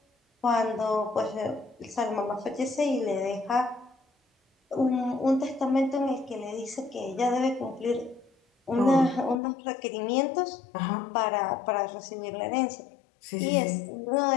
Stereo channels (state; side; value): drops out; right; at 9.4 s